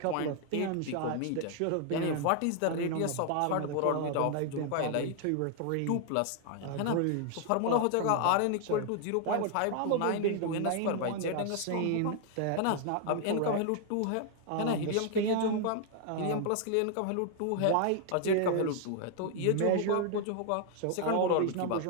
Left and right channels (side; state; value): both; different; correlation 0.00